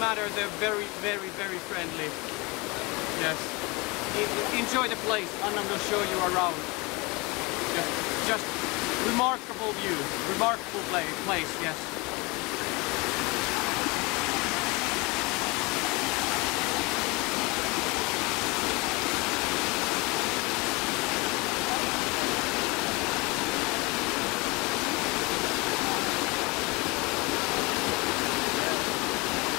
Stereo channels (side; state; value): right; quieter; 26.2 dB